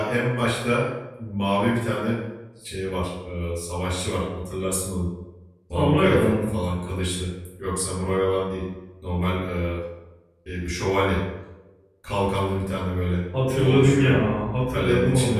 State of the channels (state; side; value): identical; both; correlation 1.00